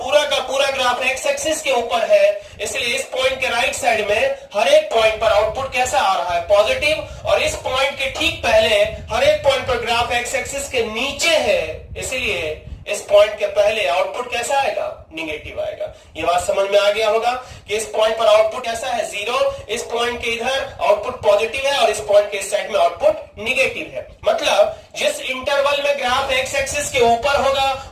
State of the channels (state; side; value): identical; both; correlation 1.00